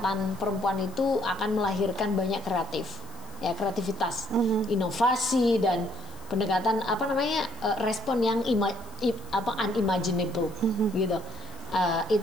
perempuan itu akan melahirkan banyak kreativitas, inovasi dan pendekatan respon yang unimaginable gitu.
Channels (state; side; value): noise; left; hiss, 23 dB below the sound